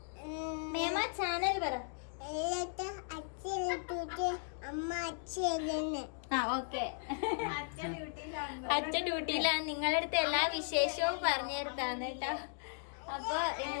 മേമ ചാനൽ പറ. ആ ഓക്കെ, അച്ഛൻ ഡ്യൂട്ടിയിലാണ്. നിങ്ങളുടെ അടുത്ത് എല്ലാ വിശേഷവും പറഞ്ഞു തരുത്താണ് കേട്ടോ. അപ്പൊ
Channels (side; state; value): right; silent; digital silence